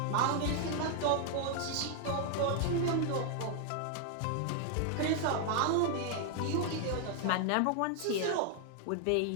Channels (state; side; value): different; both; correlation 0.00